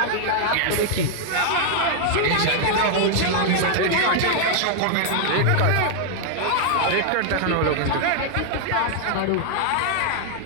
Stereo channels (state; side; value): different; both; correlation 0.00